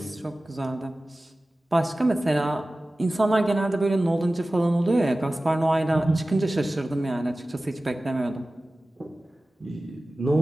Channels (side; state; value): both; normal; correlation 0.97